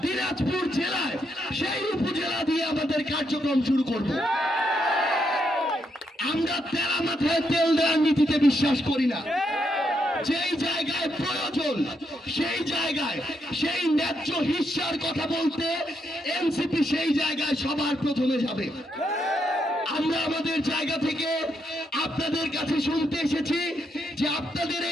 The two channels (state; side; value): normal; both; correlation 0.79